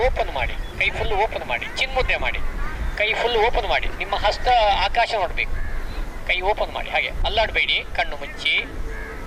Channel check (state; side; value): identical; both; correlation 1.00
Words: ಓಪನ್ ಮಾಡಿ, ಕೈ ಫುಲ್ ಓಪನ್ ಮಾಡಿ, ಚಿನ್ಮುದ್ರೆ ಮಾಡಿ, ಕೈ ಫುಲ್ ಓಪನ್ ಮಾಡಿ. ನಿಮ್ಮ ಹಸ್ತ ಆಕಾಶ ನೋಡಬೇಕು, ಕೈ ಓಪನ್ ಮಾಡಿ, ಹಾಗೆ ಅಲ್ಲಾಡಬೇಡಿ. ಕಣ್ಣು ಮುಚ್ಚಿ,